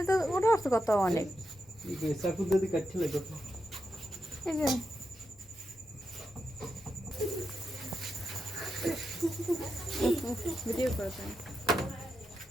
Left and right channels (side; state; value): both; normal; correlation 0.87